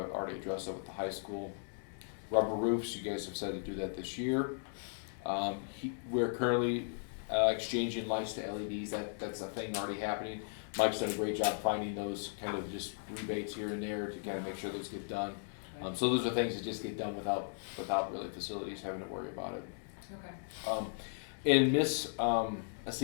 already addressed that with the high school. Rubber roofs, you guys have said to do that this year. We're currently exchanging lights to LEDs, that's a thing already happening. Mike's done a great job finding those kind of just rebates here and there to kind of make sure those get done. So those are things that just get done without really facilities having to worry about it. okay. In Miss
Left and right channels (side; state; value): right; silent; digital silence